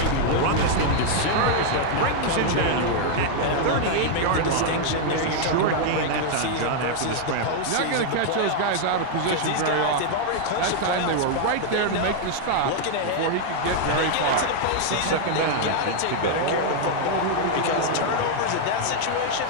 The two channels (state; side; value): different; both; correlation 0.00